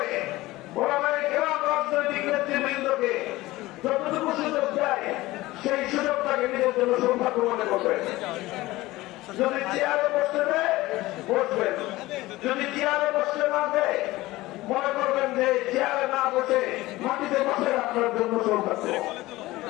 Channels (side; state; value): right; quieter; 18.5 dB